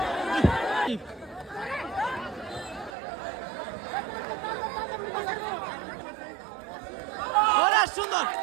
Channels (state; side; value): drops out; left; at 2.9 s